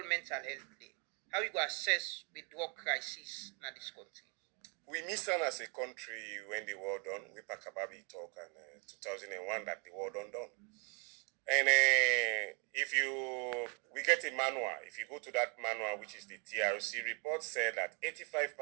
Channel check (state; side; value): quieter; left; 35.6 dB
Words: Mental Health Day. How you go assess the drug crisis in this country? We missed on as a country when the war done. We pack about it talk and 2001 that the war done. And we get a manual. If you go to that manual, which is the TRC report, said that